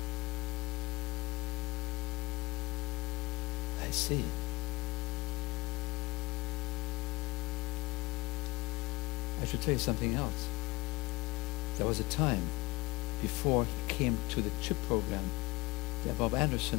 I see. I should tell you something else. There was a time before he came to the CHIP program that Bob Anderson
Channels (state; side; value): quieter; right; 22.5 dB